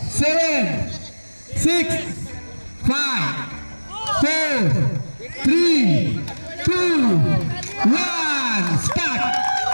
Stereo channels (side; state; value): both; inverted; correlation -1.00